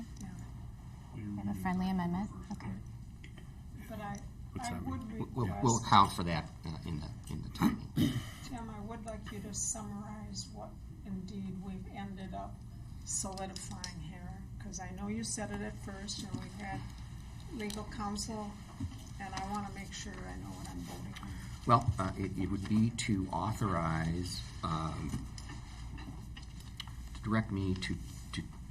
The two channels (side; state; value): both; identical; correlation 1.00